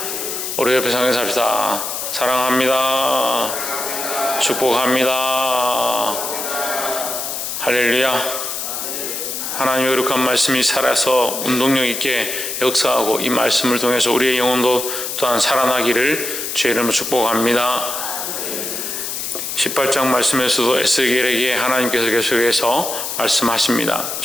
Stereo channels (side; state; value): left; noise; hiss, 4 dB below the sound